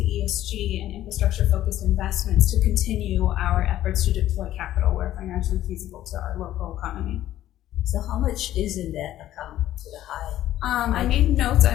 and infrastructure-focused investments to continue our efforts to deploy capital where financially feasible to our local economy. So how much is in that account to the high? I made notes.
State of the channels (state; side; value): quieter; right; 13.2 dB